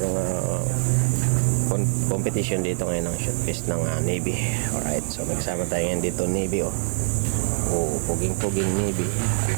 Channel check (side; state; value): left; silent; 63 dB below the other